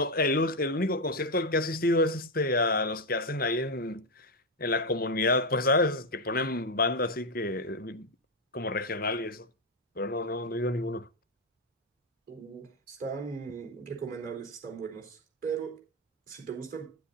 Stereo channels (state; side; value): normal; both; correlation 0.05